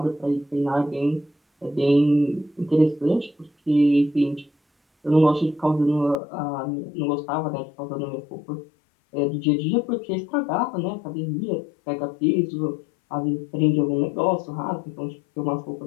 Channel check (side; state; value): right; drops out; at 6.2 s